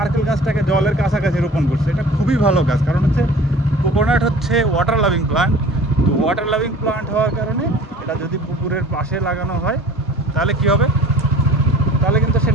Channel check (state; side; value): normal; both; correlation 0.45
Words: গাছটাকে জলের কাছাকাছি রোপণ করছে। এটা খুবই ভালো কাজ, কারণ হচ্ছে কোকোনাট হচ্ছে ওয়াটার লাভিং প্লান্ট। তো ওয়াটার লাভিং প্লান্ট হওয়ার কারণে এটা যদি পুকুরের পাশে লাগানো হয় তাহলে কি হবে, তাহলে কিন্তু সে